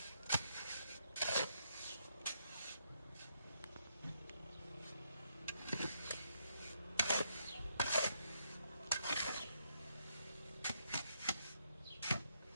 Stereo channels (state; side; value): inverted; both; correlation -0.77